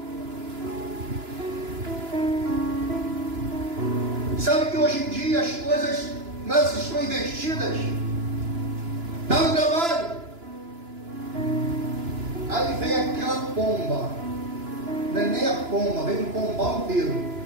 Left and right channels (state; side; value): late; left; 2.9 ms